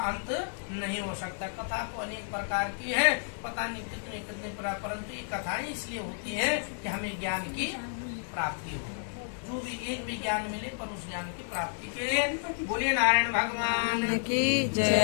अंत नहीं हो सकता। कथा तो अनेक प्रकार की है, पता नहीं कितने कितने परंतु ये कथाएं इसलिए होती है कि हमें ज्ञान की प्राप्ति हो, जो भी एक भी ज्ञान मिले पर उस ज्ञान की प्राप्ति के लिए। बोले नारायण भगवान की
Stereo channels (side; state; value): right; silent; 57 dB below the other